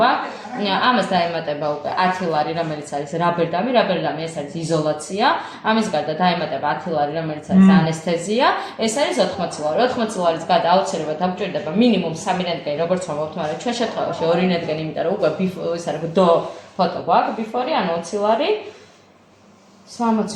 ამას დაემატება უკვე 10 ლარი, რომელიც არის რაბერდამი ეს არის იზოლაცია. ამის გარდა დაემატება 10 ლარი, რომელიც არის ანესთეზია. ეს არის 80 ლარი. 80 ლარის გარდა აუცილებლად დაგჭირდება მინიმუმ 3 რენტგენი, როგორც ვამბობთ, მაგრამ ჩვენ შემთხვევაში 2 რენტგენი, იმიტომ რომ უკვე ის არის დო ფოტო გვაქვს, ბიფორი, ანუ 20 ლარი.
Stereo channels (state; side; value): identical; both; correlation 1.00